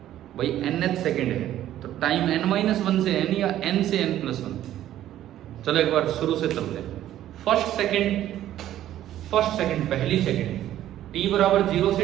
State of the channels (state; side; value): quieter; left; 12.6 dB